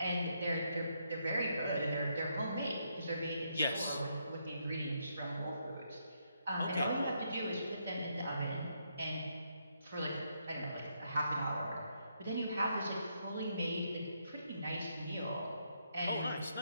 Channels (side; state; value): both; inverted; correlation -0.77